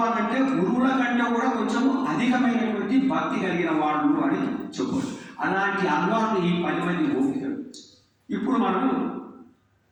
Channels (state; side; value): identical; both; correlation 1.00